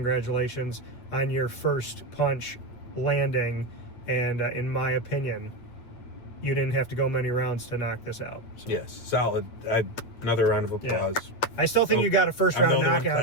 on your first punch landing, and in my opinion, you didn't have to go many rounds to knock this out. So. Yes, solid. Another round of applause. Yeah. I still think you got a first round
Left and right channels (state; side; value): late; right; 8.6 ms